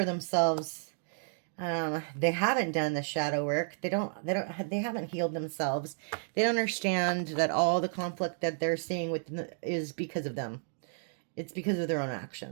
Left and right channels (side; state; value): left; silent; digital silence